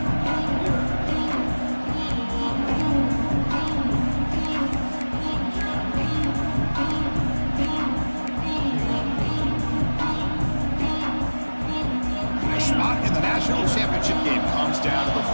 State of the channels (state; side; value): inverted; both; correlation -1.00